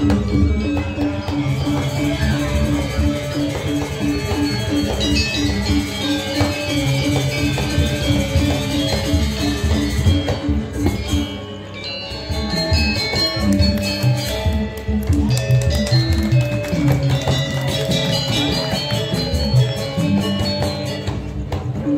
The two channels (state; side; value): identical; both; correlation 1.00